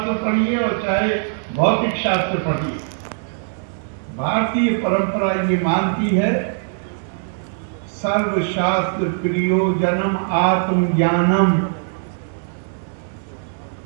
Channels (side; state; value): left; silent; digital silence